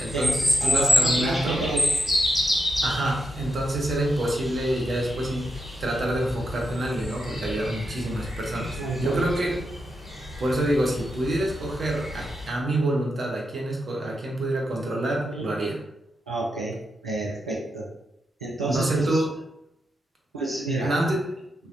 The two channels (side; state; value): both; normal; correlation 0.85